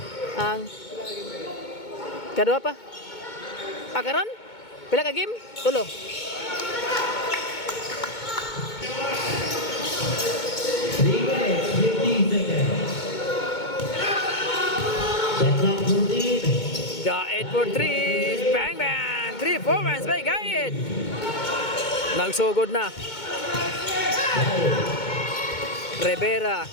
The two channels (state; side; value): late; right; 2.2 ms